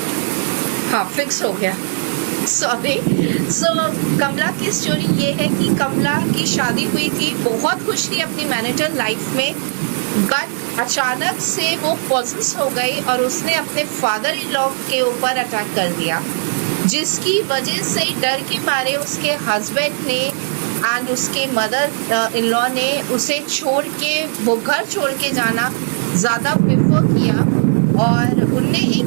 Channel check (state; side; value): silent; left; digital silence